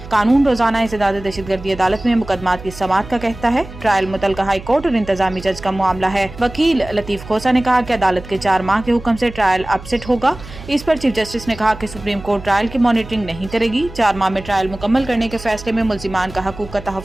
कानून रोजाना इंसदाद दहशतगर्दी अदालत में मुकदमात की समाअत का कहता है। ट्रायल मुतलका हाई कोर्ट और इंतजामी जज का मामला है। वकील लतीफ़ खोसा ने कहा कि अदालत के 4 माह के हुक्म से ट्रायल अपसेट होगा। इस पर चीफ जस्टिस ने कहा कि सुप्रीम कोर्ट ट्रायल की मॉनिटरिंग नहीं करेगी। 4 माह में ट्रायल मुकम्मल करने के फैसले में मुल्जिमान का हकूक का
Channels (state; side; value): noise; right; hum, 15 dB below the sound